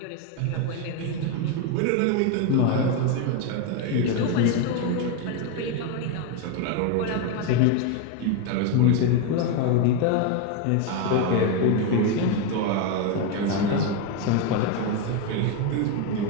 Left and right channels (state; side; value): different; both; correlation 0.02